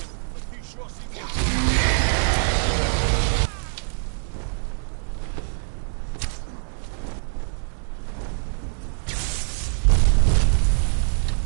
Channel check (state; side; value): silent; left; digital silence